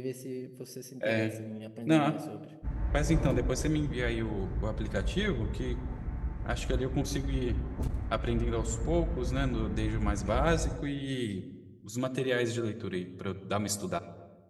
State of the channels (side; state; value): both; identical; correlation 1.00